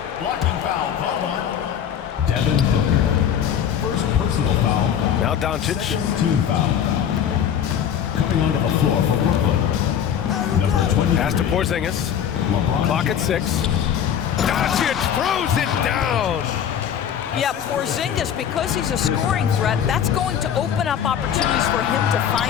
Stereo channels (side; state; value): right; quieter; 9.0 dB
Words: Blocking foul called on Devin Booker. First personal foul. Now Doncic. Second team foul. Coming onto the floor for Brooklyn. Number 23. Pass to Porzingis. LeBron Clock at James. 6. Doncic throws it down. Yeah, Porzingis, because he's a scoring threat, that's going to open up opportunities for him to